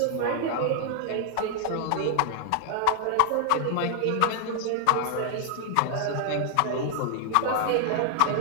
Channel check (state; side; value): different; both; correlation 0.00